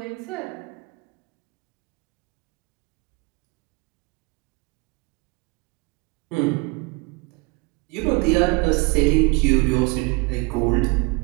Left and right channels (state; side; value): quieter; left; 27.4 dB